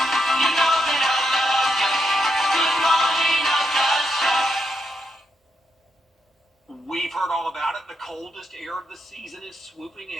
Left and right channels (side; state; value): both; normal; correlation 0.81